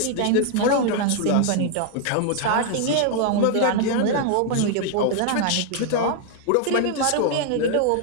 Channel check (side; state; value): both; different; correlation 0.00